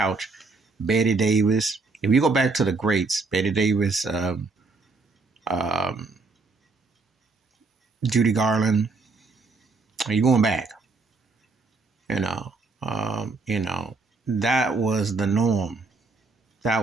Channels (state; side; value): quieter; left; 3.8 dB